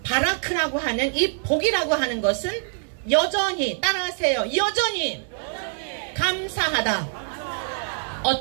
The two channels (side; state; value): left; silent; digital silence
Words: 바라크라고 하는 이 복이라고 하는 것은 여전히, 따라하세요. 여전히 감사하다.